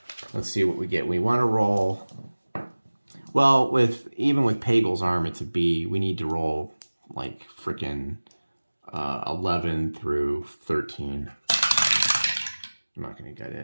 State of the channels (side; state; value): both; inverted; correlation -1.00